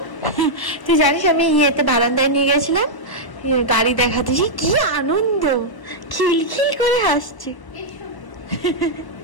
তুই জানিস আমি ইয়েতে বারান্দায় নিয়ে গেছিলাম, গাড়ি দেখাতেছি, কি আনন্দ, খিলখিল করে হাসছি।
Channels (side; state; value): right; late; 1.0 ms